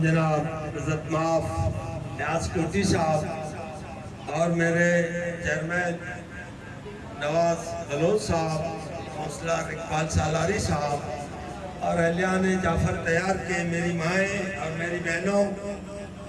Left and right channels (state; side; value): identical; both; correlation 1.00